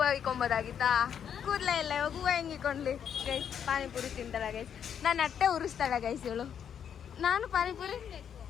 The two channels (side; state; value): right; quieter; 8.3 dB